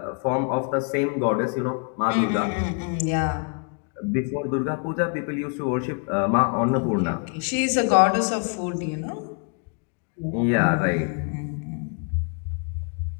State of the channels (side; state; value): right; quieter; 39.6 dB